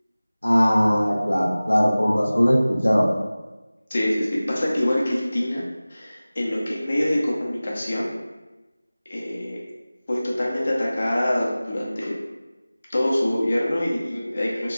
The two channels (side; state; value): both; inverted; correlation -0.98